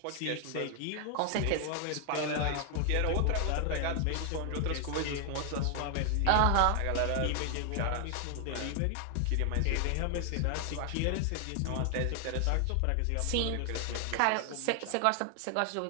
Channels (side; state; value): both; different; correlation 0.00